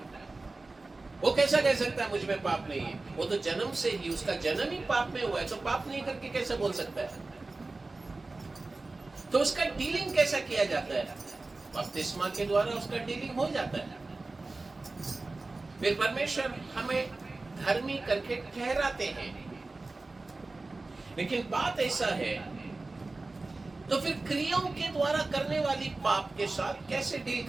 वो कैसा कह सकता है मुझ में पाप नहीं है? वो तो जन्म से ही, उसका जन्म ही पाप में हुआ है, तो पाप नहीं करके कैसे बोल सकता है? तो उसका डीलिंग कैसा किया जाता है? बपतिस्मा के द्वारा उसका डीलिंग हो जाता है। फिर परमेश्वर हमें धर्मी करके ठहराते हैं। लेकिन बात ऐसा है, तो फिर क्रियाओं के द्वारा करने वाली पाप के साथ कैसे डील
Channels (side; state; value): left; quieter; 3.4 dB